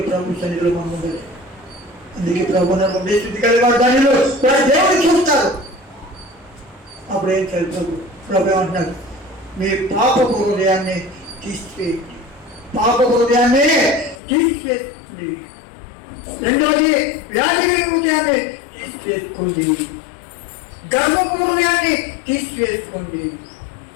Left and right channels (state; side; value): drops out; right; at 14.2 s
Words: ప్రభు సన్నిధిలో మనం ఉండదు. అందుకే ప్రభు నన్ను శుద్ధి కలిగి వారు ధన్యులు, వారు దేవుడు చూస్తారు. అప్పుడు ఏం చేయాలి? ప్రభు ఏమంటున్నారు? మీ పాప హృదయాన్ని తీసివేయండి, పాప హృదయాన్ని తీసివేయండి. రెండోది, వ్యాధి కలిగిన హృదయాన్ని తీసివేసుకోండి, గర్వపు హృదయాన్ని తీసివేసుకోండి.